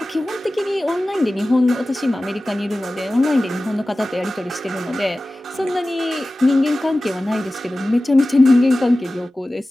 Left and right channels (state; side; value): normal; both; correlation 0.96